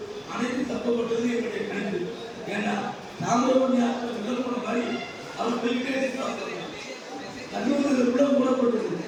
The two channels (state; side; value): identical; both; correlation 1.00